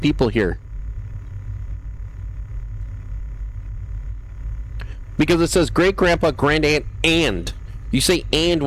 here. Because it says great grandpa, grand aunt, and. You say and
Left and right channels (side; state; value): both; identical; correlation 1.00